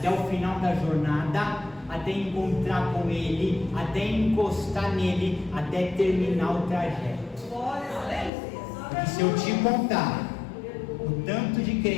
o final da jornada, até encontrar com Ele, até encostar nele, até terminar o trajeto. Porque se eu te contar o tanto de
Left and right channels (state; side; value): drops out; right; at 8.3 s